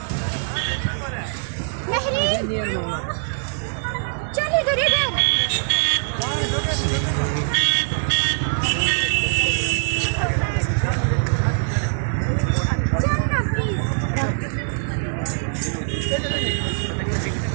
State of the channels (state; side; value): silent; left; digital silence